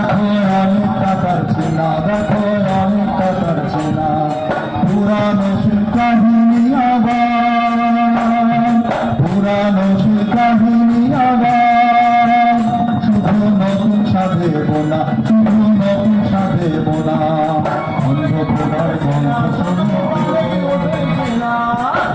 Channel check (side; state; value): both; identical; correlation 1.00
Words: অনেকটা তার চেনা, দেখো অনেকটা তার চেনা। পুরানো সে কাহিনী আবার, পুরানো সে কাহিনী আবার, শুধু নতুন সাধেব না, শুধু নতুন সাধেব না। অন্ধকার গল্প শোনো না।